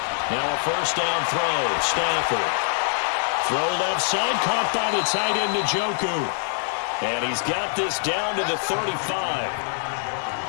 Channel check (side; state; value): right; silent; digital silence